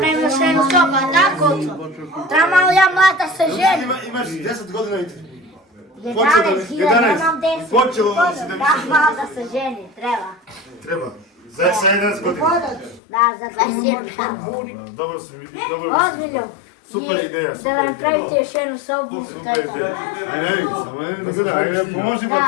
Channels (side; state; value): right; drops out; at 13.0 s